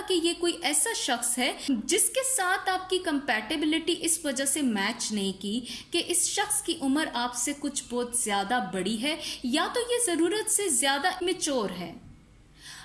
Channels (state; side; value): identical; both; correlation 1.00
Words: कि ये कोई ऐसा शख्स है जिसके साथ आपकी कंपैटिबिलिटी इस वजह से मैच नहीं की कि इस शख्स की उम्र आपसे कुछ बहुत ज़्यादा बड़ी है, या तो ये ज़रूरत से ज़्यादा मैच्योर है।